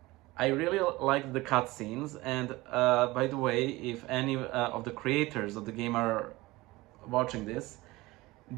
I really like the cutscenes, and by the way, if any of the creators of the game are watching this,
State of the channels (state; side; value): quieter; left; 20.4 dB